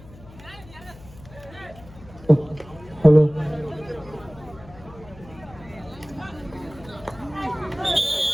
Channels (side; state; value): left; noise; hum, 20 dB below the sound